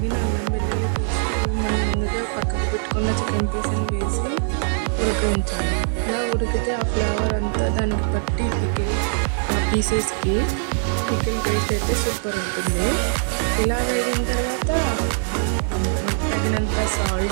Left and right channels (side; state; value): left; silent; 64 dB below the other